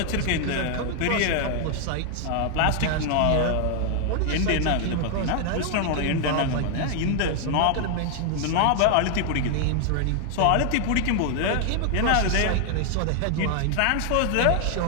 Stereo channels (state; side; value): different; both; correlation 0.00